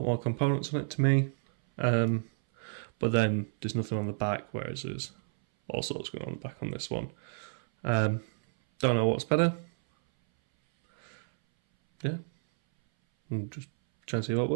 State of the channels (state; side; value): silent; left; 58 dB below the other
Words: more components on it to me. But then there's nothing on the back, whereas there's all sorts going on the back on this one. Don't know what's better. Yeah. I'm just trying to see what